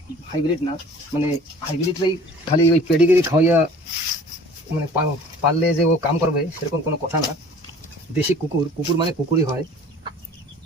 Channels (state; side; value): normal; both; correlation 0.47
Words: হাইব্রিড না। মানে হাইব্রিডটাই খালি ওই পেডিগ্রি খাওয়াইয়া মানে পারলে যে ও কাম করবে সেরকম কোনো কথা না। দেশি কুকুর, কুকুর মানে কুকুরই হয়।